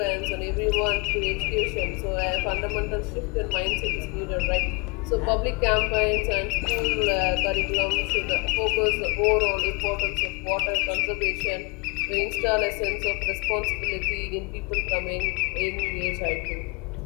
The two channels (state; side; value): quieter; right; 27.7 dB